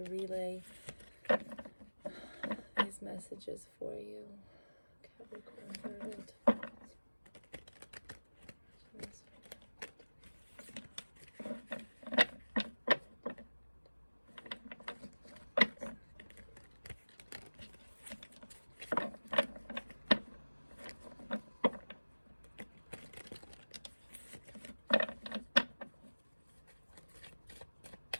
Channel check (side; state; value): both; inverted; correlation -1.00